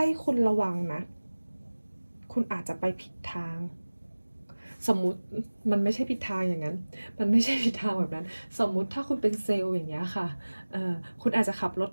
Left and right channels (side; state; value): both; inverted; correlation -1.00